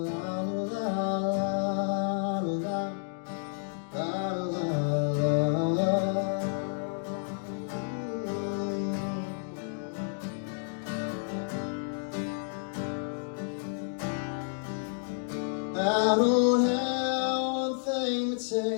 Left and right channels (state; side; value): silent; right; digital silence